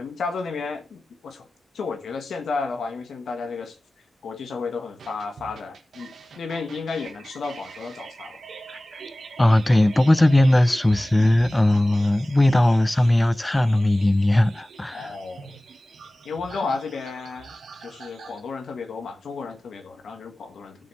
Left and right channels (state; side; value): normal; both; correlation 0.97